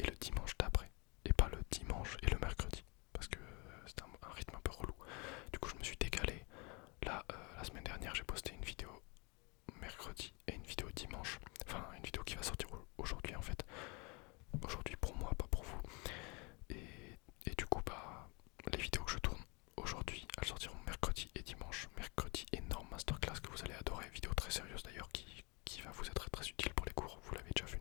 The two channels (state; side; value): quieter; right; 29.8 dB